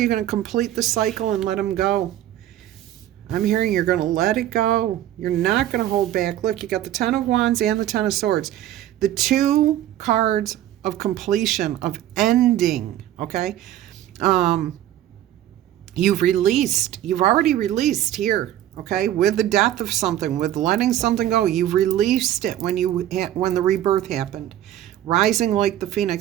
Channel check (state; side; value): quieter; left; 12.5 dB